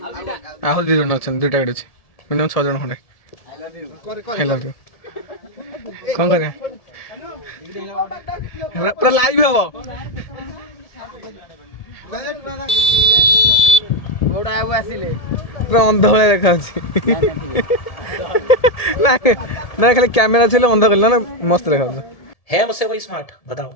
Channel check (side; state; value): right; late; 1.7 ms